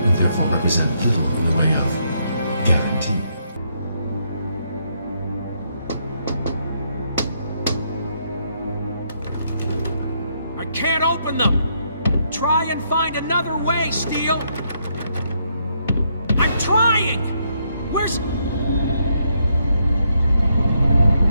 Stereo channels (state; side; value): inverted; both; correlation -0.75